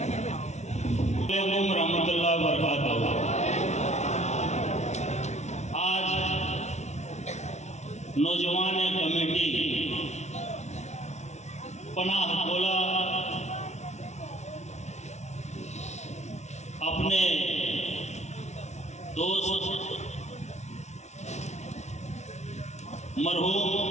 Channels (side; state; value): right; late; 0.33 ms